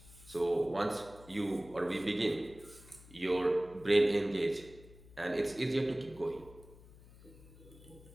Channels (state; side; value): noise; left; hum, 21 dB below the sound